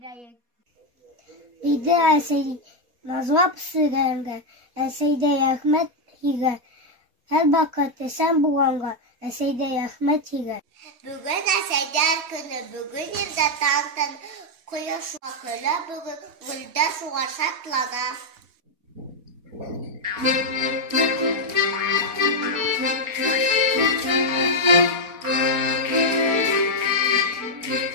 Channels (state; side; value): late; left; 4.2 ms